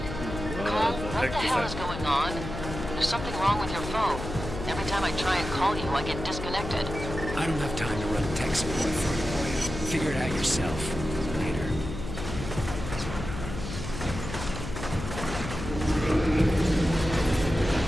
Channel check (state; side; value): noise; left; hum, 8 dB below the sound